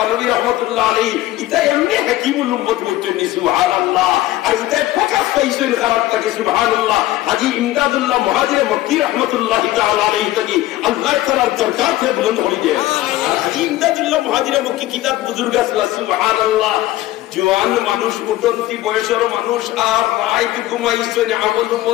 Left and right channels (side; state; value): right; quieter; 15.9 dB